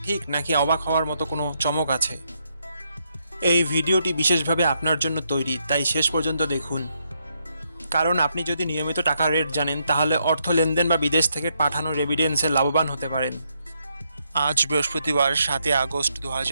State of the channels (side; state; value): both; inverted; correlation -0.78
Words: ঠিক, নাকি অবাক হওয়ার মতো কোনো চমক আছে? এই ভিডিওটি বিশেষভাবে আপনার জন্য তৈরি, তাই শেষ পর্যন্ত দেখুন। কারণ আপনি যদি নিয়মিত টাকার রেট জানেন, তাহলে অর্থ লেনদেন বা বিদেশ থেকে পাঠানো রেমিটেন্সে লাভবান হতে পারেন। আজ বৃহস্পতিবার 7 আগস্ট